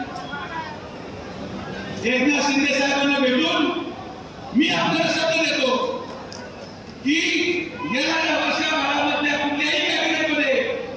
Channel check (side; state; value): both; identical; correlation 1.00